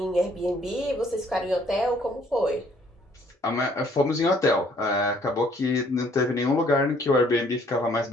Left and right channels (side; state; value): both; normal; correlation 0.62